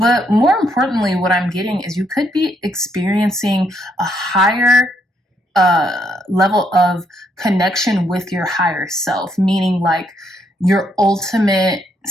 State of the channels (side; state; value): both; normal; correlation 0.74